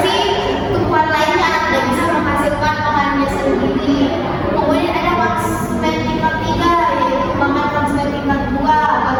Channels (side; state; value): both; identical; correlation 1.00